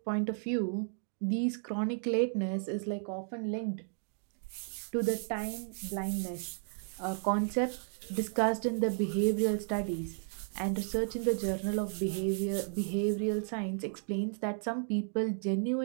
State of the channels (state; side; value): silent; left; 55 dB below the other